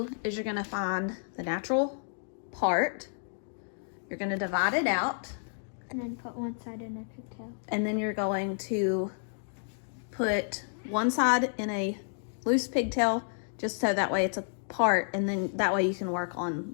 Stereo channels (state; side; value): silent; right; digital silence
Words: is you're gonna find the natural part. You're gonna divide it out. And then put one side in a pigtail. And then you're going to put one side in a loose pigtail, just so that way it's apart, and then that way you can work on